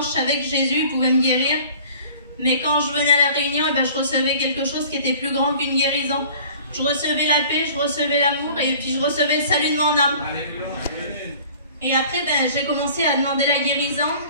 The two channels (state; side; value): inverted; both; correlation -0.48